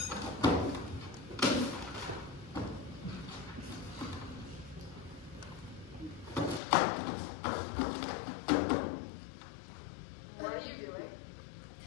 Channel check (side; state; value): right; drops out; at 6.6 s